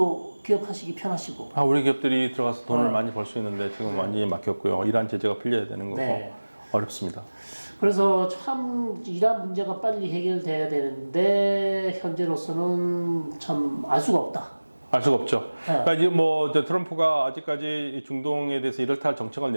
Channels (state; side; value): inverted; both; correlation -1.00